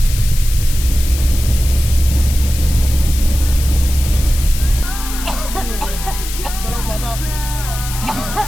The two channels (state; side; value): noise; left; hiss, 9 dB below the sound